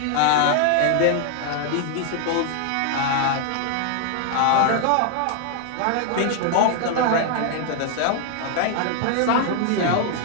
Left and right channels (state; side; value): different; both; correlation 0.00